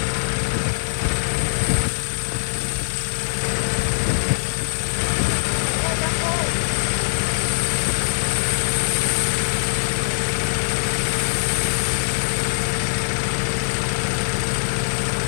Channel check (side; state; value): right; silent; 57 dB below the other